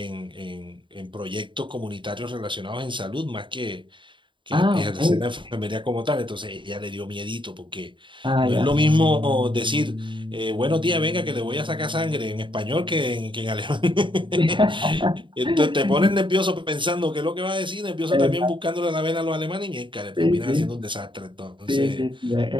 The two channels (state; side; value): late; left; 0.24 ms